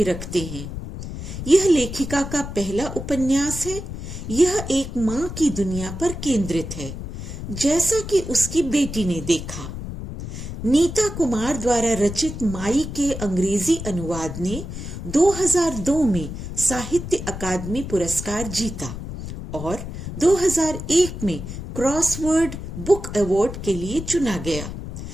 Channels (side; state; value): left; noise; rumble, 8 dB below the sound